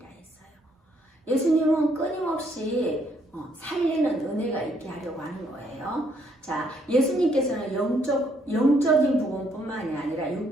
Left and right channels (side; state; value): both; normal; correlation 0.70